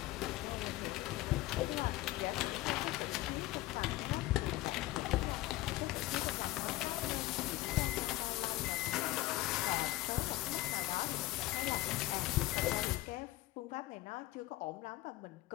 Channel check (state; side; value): quieter; right; 17.6 dB